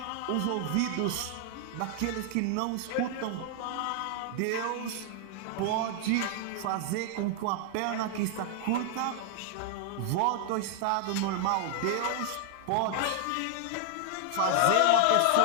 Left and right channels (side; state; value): both; different; correlation 0.00